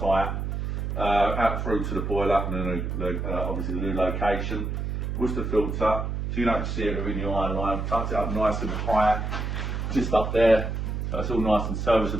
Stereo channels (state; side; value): noise; right; hum, 2 dB below the sound